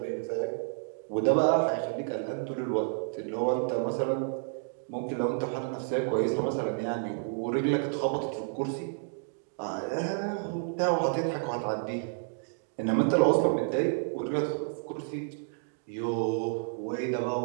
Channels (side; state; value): left; silent; digital silence